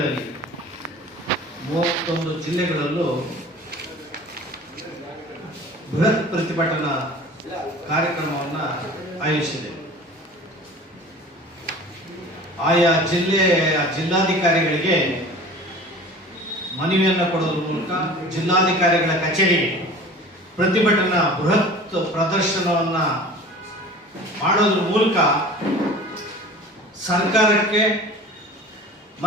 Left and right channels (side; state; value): both; normal; correlation 0.41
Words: 31 ಜಿಲ್ಲೆಗಳಲ್ಲೂ ಬೃಹತ್ ಪ್ರತಿಭಟನಾ ಕಾರ್ಯಕ್ರಮವನ್ನು ಆಯೋಜಿಸಿದೆ. ಆಯಾ ಜಿಲ್ಲಾಧಿಕಾರಿಗಳಿಗೆ ಮನವಿಯನ್ನು ಕೊಡೋದ್ರ ಮೂಲಕ ಜಿಲ್ಲಾಧಿಕಾರಿಗಳ ಕಚೇರಿಗೆ ಪ್ರತಿಭಟನಾ ಬೃಹತ್ ಪ್ರದರ್ಶನವನ್ನು ಮಾಡೋದ್ರ ಮೂಲಕ ಸರ್ಕಾರಕ್ಕೆ